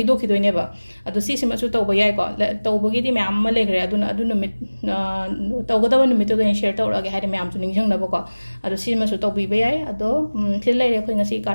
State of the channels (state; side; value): inverted; both; correlation -1.00